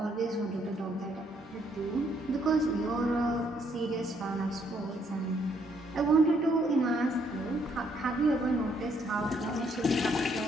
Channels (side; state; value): both; normal; correlation 0.70